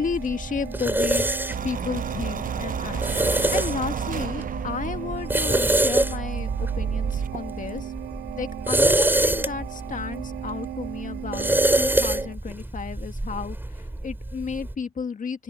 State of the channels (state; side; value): normal; both; correlation 0.60